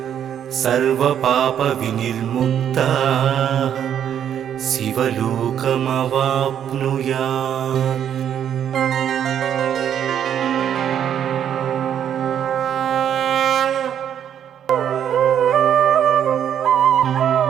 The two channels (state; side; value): quieter; left; 9.4 dB